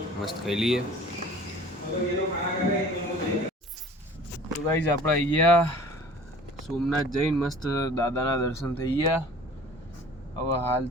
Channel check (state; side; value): normal; both; correlation 0.46